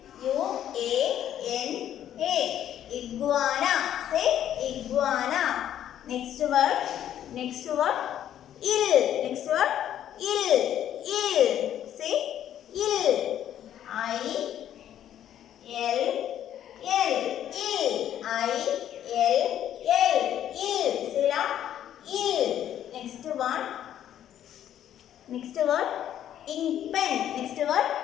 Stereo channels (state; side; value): quieter; right; 10.8 dB